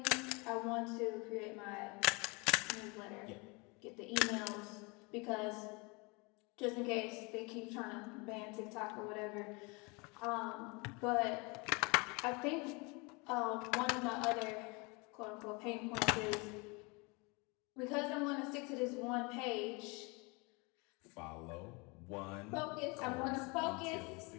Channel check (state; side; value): quieter; right; 28.7 dB